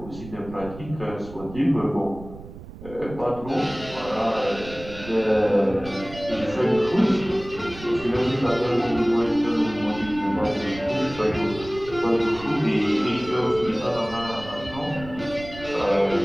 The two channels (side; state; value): right; noise; rumble, 15 dB below the sound